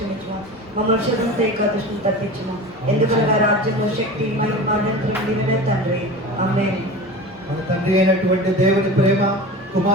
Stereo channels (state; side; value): normal; both; correlation 0.33